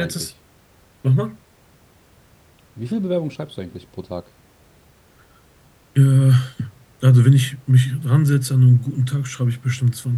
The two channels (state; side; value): identical; both; correlation 1.00